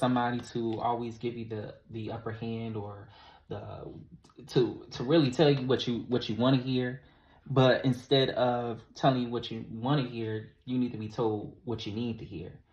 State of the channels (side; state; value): both; identical; correlation 1.00